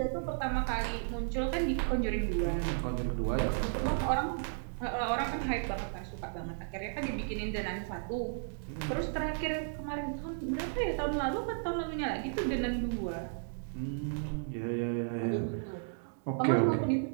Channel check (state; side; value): silent; left; digital silence